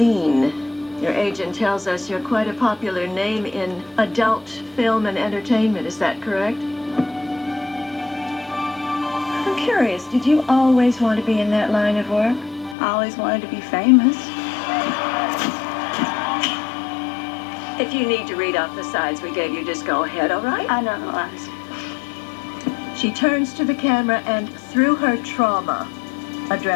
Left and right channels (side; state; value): right; drops out; at 12.8 s